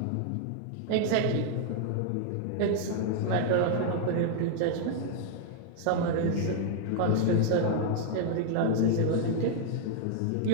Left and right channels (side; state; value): both; different; correlation 0.00